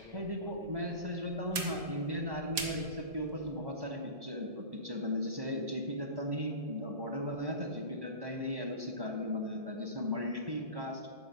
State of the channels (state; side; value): late; left; 1.7 ms